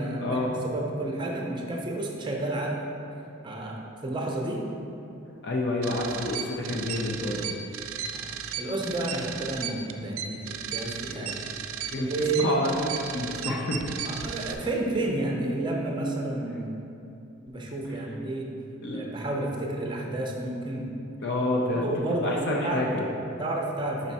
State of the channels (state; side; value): normal; both; correlation 0.39